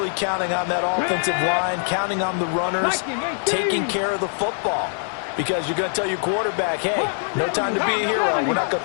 counting on that offensive line, counting on the runners, taking care of the football. Because you're going to tell your quarterback, hey, no time to be a hero. We're not going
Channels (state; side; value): silent; right; digital silence